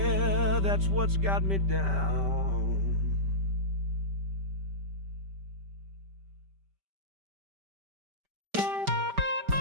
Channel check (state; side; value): late; left; 5.1 ms